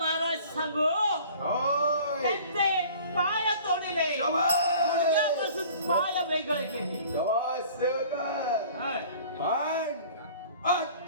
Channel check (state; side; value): inverted; both; correlation -0.47